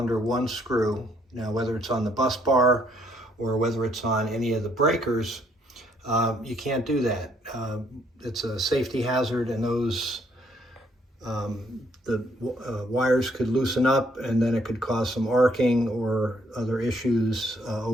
one screw, now whether it's on the bus bar or whether it's on any of the breakers, you can't do that. It's a safety hazard, and those wires could loosen up, and then it could cause some arcing or other issues,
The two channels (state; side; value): normal; both; correlation 0.68